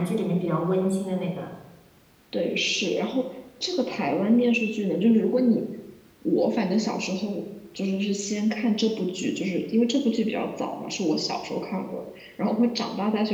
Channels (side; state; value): both; identical; correlation 1.00